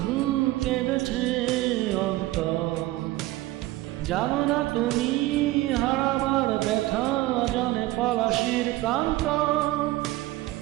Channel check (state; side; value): quieter; left; 17.7 dB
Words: কেঁদেছে অন্তর। জানো না তুমি হারাবার ব্যথা, জানে পলাশির প্রান্ত।